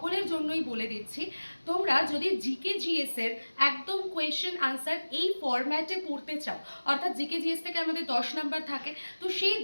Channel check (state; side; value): inverted; both; correlation -1.00